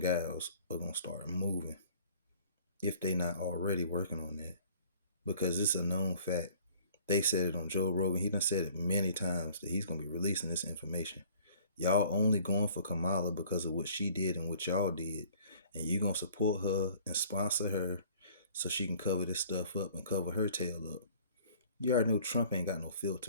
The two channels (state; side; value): inverted; both; correlation -0.53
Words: gals are gonna start moving if they not already working on that, because it's a known fact. They said it on Joe Rogan. He done said it many times that he's gonna be releasing this information. Y'all only going for Kamala because of what she did and what y'all did, and you gonna support her and sponsor her so she can cover this stuff up and cover her tail up. You already know Trump ain't got no